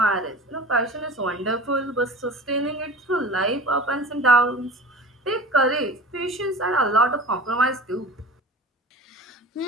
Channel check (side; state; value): both; normal; correlation 0.38